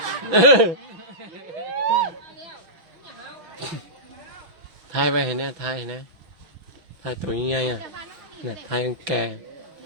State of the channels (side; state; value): left; late; 6.0 ms